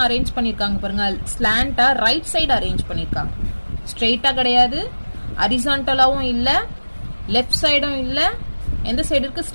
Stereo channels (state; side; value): inverted; both; correlation -1.00